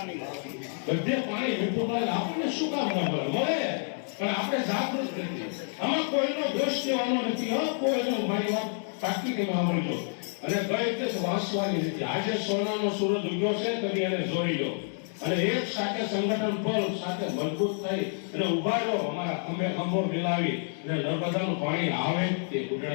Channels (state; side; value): silent; right; 59 dB below the other